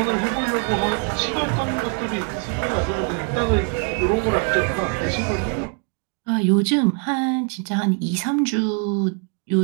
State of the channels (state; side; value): quieter; left; 35.8 dB